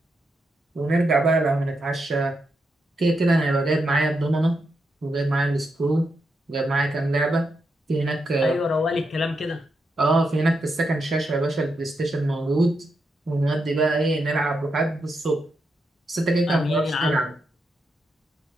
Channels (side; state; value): both; normal; correlation 0.83